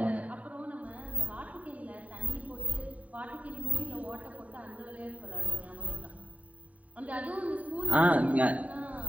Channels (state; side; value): late; left; 0.069 ms